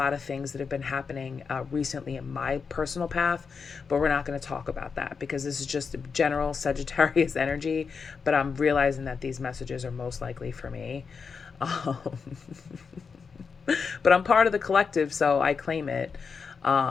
of things that have been happening recently in my personal path, but we're not going to talk about that because this is just general Sagittarius energy, but I'm realizing that these messages are most likely for me. But I'm part of the collective, so I claim it.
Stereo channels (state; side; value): quieter; right; 5.5 dB